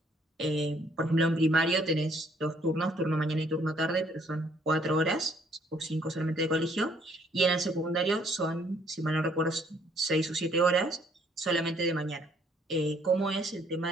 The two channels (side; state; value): both; normal; correlation 0.64